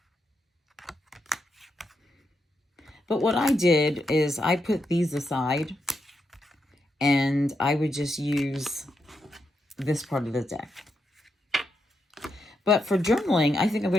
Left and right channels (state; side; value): normal; both; correlation 0.83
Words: But what I did is I put these aside, and I would just use this part of the deck. But for journaling, I think I'm